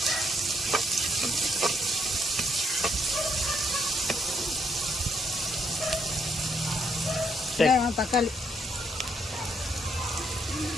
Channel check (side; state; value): both; normal; correlation 0.75